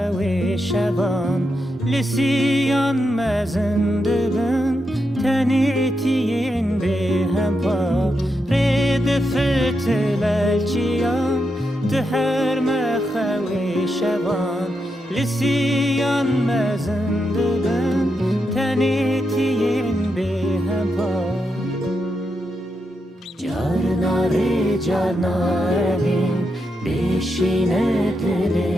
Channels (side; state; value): both; normal; correlation 0.85